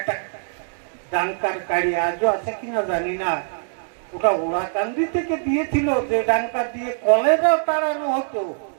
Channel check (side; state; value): left; silent; digital silence